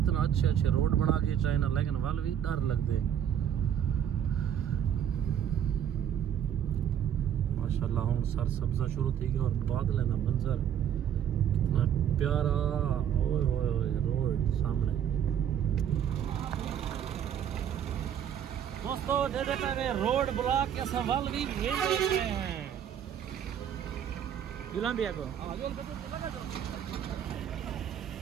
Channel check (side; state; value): left; quieter; 9.4 dB